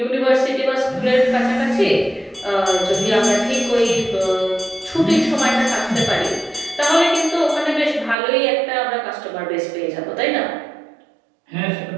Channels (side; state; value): left; drops out; at 8.2 s